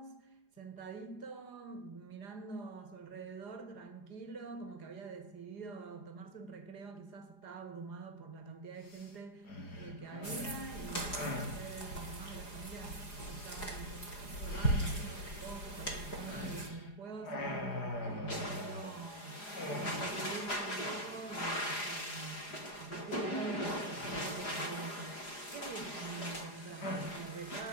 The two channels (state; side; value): late; right; 4.9 ms